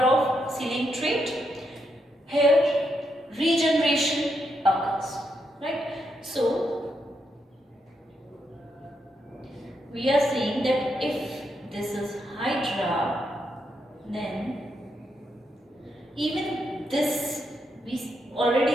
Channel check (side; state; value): both; normal; correlation 0.80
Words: of ceiling trait. Here regeneration occurs, right? So we are saying that if this is Hydra, then even this we